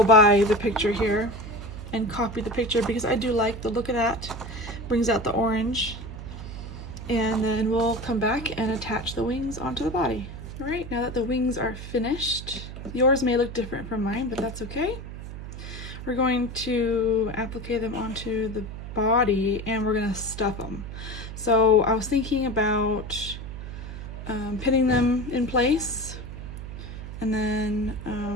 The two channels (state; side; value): noise; right; hum, 10 dB below the sound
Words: by the picture here and copy the picture because I do like the look of that. Brings out the orange, and then we'll come back and attach the wings onto the body. All right, now that the wings are finished, yours may look different from mine, but that's okay. We're going to apply them onto the body and we're gonna stuff them. So I was thinking about pinning them in place, and then